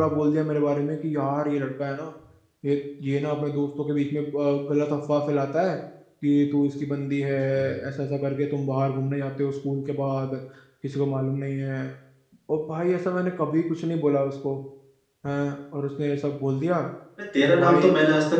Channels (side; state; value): both; identical; correlation 1.00